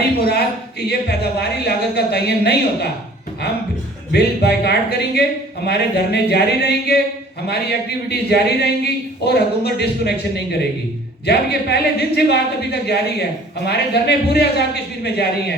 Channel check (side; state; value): both; normal; correlation 0.52